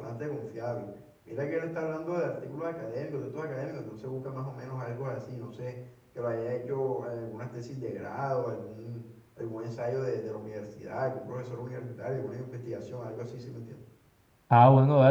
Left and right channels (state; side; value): identical; both; correlation 1.00